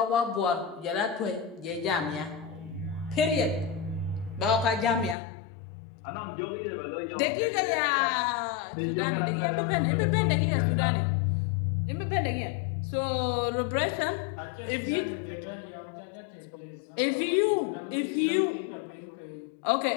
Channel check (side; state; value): right; drops out; at 5.2 s